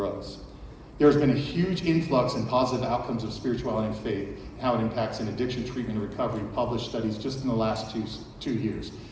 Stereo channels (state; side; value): identical; both; correlation 1.00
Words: There's been a huge influx in positive outcomes of spirituality and faith, and how it impacts in addiction treatment and recovery, published studies just in the last two years.